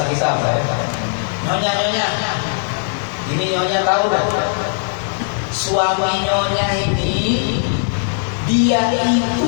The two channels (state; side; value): silent; right; digital silence